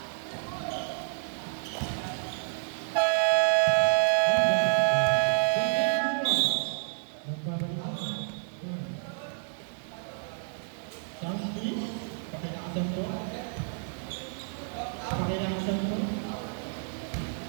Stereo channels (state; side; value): silent; left; 58 dB below the other